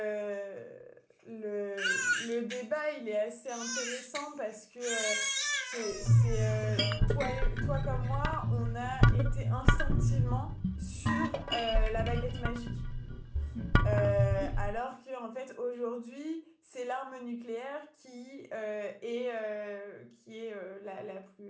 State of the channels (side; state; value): both; identical; correlation 1.00